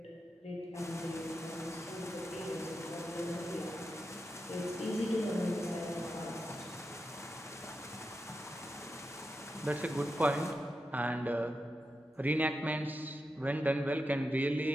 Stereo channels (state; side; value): normal; both; correlation 0.88